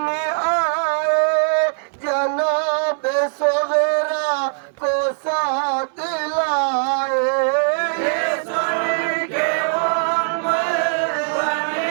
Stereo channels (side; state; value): left; silent; 65 dB below the other